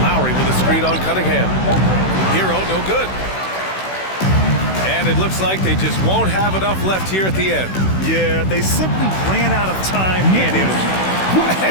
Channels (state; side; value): late; right; 16 ms